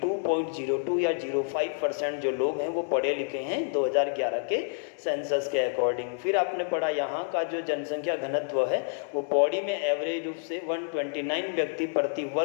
या 05% जो लोग हैं वो पढ़े लिखे हैं 2011 के सेंसस के अकॉर्डिंग। फिर आपने पढ़ा यहाँ का जो जनसंख्या घनत्व है वो पौड़ी में एवरेज रूप से 129 व्यक्ति प्रति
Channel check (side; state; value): right; silent; 59 dB below the other